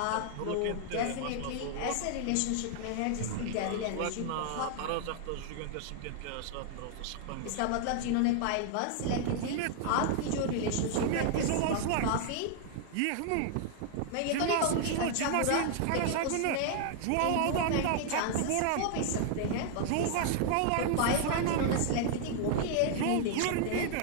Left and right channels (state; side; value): different; both; correlation 0.00